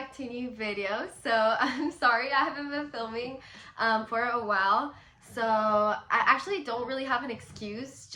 to a new video. So I'm sorry I haven't been filming for a while. So I actually don't really have an excuse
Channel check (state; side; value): identical; both; correlation 1.00